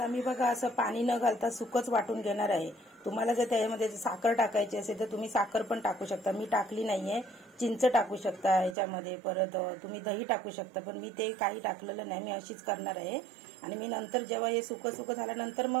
मी बघा असं पाणी न घालता सुकच वाटून घेणार आहे। तुम्हाला जर त्यामध्ये साखर टाकायची असेल तर तुम्ही साखर पण टाकू शकता. मी टाकली नाहीये. चिंच टाकू शकता ह्याच्यामध्ये, परत तुम्ही दही टाकू शकता, पण मी ते काही टाकलेलं नाही. मी अशीच करणार आहे. आणि मी नंतर जेव्हा हे सुकं सुकं झाल्यानंतर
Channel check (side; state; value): left; drops out; at 8.8 s